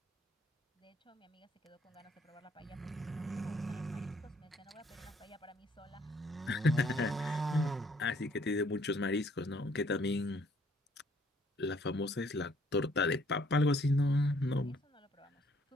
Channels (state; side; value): normal; both; correlation 0.64